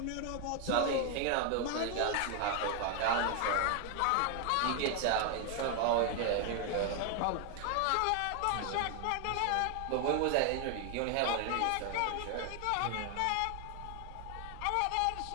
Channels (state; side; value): different; both; correlation 0.00